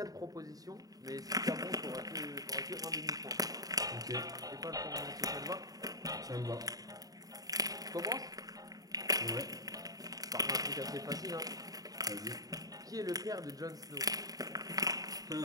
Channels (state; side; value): late; left; 0.18 ms